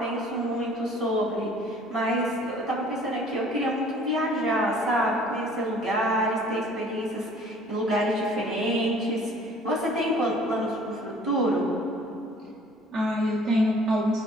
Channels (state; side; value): normal; both; correlation 0.53